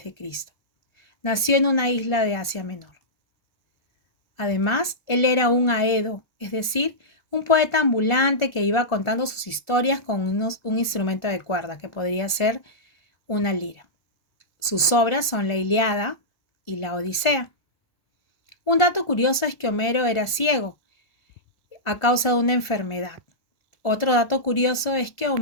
Nació en una isla de Asia Menor. Además, él era un aedo, es decir, un poeta ambulante que iba contando sus historias con un instrumento de cuerda, que podría ser una lira. Sus obras son la Ilíada y la Odisea. Un dato curioso es que Homero era ciego a causa de una enfermedad. Otro dato curioso es que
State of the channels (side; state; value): right; late; 1.4 ms